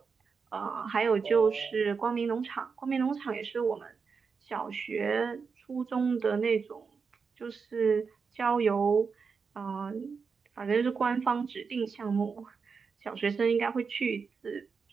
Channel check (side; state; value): left; quieter; 5.4 dB